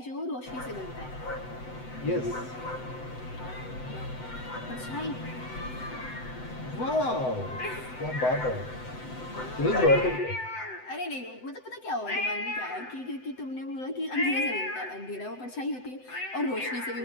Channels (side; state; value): right; late; 7.9 ms